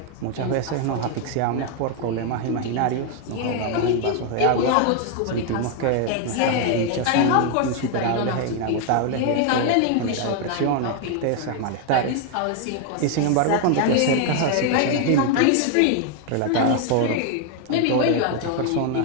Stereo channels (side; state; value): both; different; correlation 0.01